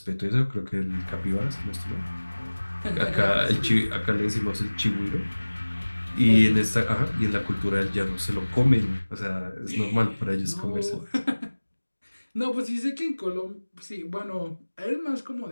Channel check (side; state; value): both; inverted; correlation -1.00